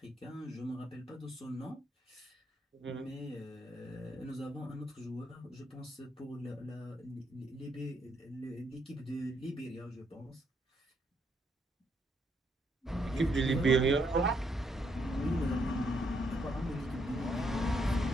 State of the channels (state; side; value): normal; both; correlation 0.74